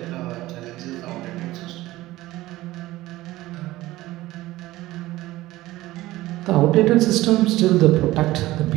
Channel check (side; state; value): left; quieter; 17.4 dB